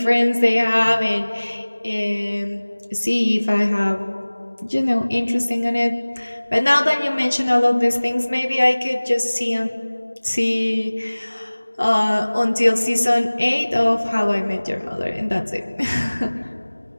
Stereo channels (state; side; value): inverted; both; correlation -1.00